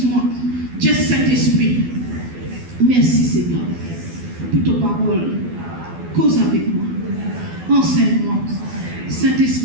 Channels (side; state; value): left; late; 12 ms